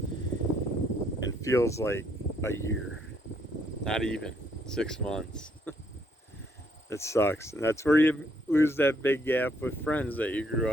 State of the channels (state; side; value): normal; both; correlation 0.70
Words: and feels like a year. Not even 6 months. It sucks. And that's where you lose that big gap with friends that you grew